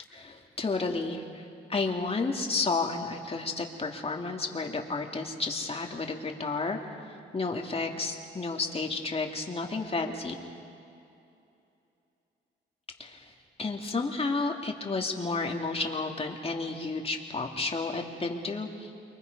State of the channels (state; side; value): quieter; right; 3.2 dB